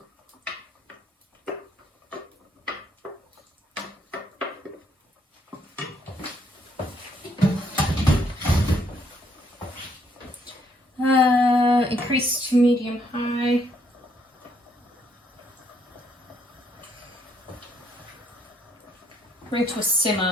Increase to medium high. Bring to a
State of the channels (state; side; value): normal; both; correlation 0.70